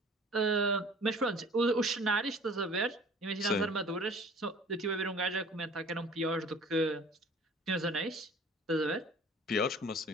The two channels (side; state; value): both; normal; correlation 0.48